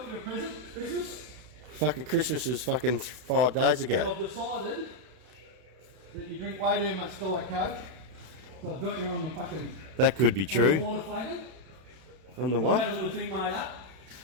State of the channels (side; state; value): left; late; 32 ms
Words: you a present, Christmas. Fucking Christmas was fucking 5 days And ago. I've decided that you drink way too much Diet Coke. So I've got you on the fucking... That could be On the true. water flagon. On the I've what? had a little thing made up.